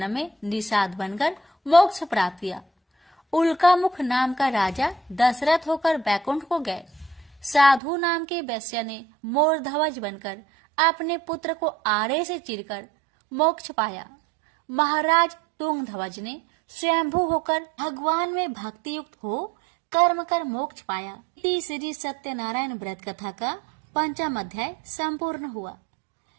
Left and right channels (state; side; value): drops out; left; at 7.8 s